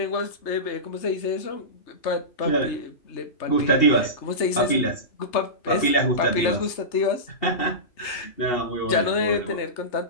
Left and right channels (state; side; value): late; right; 3.3 ms